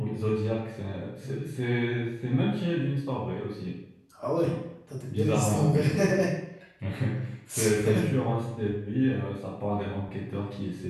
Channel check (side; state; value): both; identical; correlation 1.00